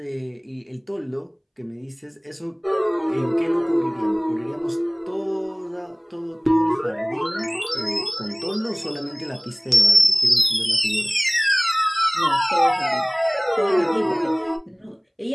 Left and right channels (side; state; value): both; identical; correlation 1.00